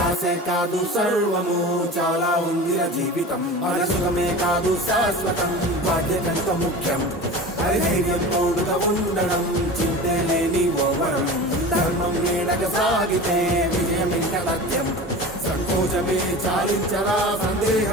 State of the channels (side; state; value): both; normal; correlation 0.33